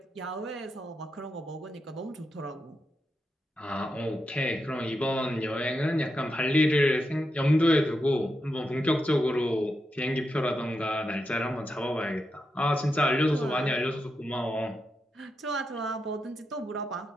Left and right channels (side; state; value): both; normal; correlation 0.86